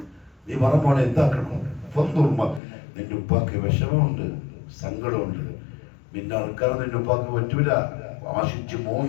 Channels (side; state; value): right; drops out; at 2.6 s